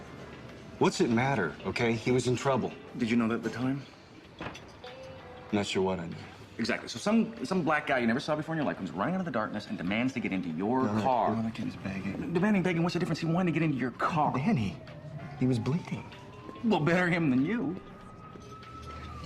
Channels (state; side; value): identical; both; correlation 1.00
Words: What's it matter, okay? He was in trouble. Did you know that at the time? Not sure what I knew. Exactly. So some black guy you never saw before in your life comes running out of the darkness and demands to get into your car. No, that kid is begging. Demanding, begging, what's the difference? He wanted to get into your car. Danny, he was bleeding. Well, better him than you.